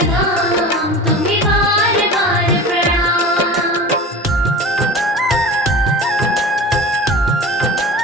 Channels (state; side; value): normal; both; correlation 0.35